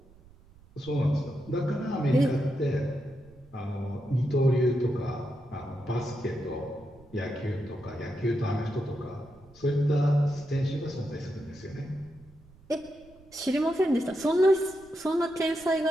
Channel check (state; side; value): noise; right; rumble, 25 dB below the sound